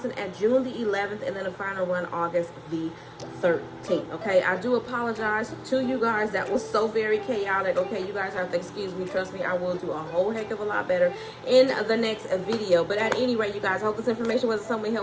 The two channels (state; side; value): identical; both; correlation 1.00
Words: at June the 11th, and then a final run August the 13th. Okay, I do apologize to you guys. That was so very chaotic. Okay, you guys have to excuse me. Trust me, I will do a whole heck of a lot better in the next video. But at any rate, you guys, I hope this information was somewhat